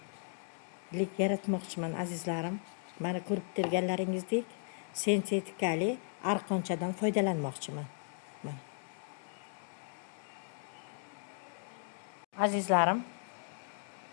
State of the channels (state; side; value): silent; right; 54 dB below the other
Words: yaratmoqchiman azizlarim. Mana ko'rib turganlaringizdek sintetikali arqonchadan foydalanmoqchiman. Mana. Azizlarim,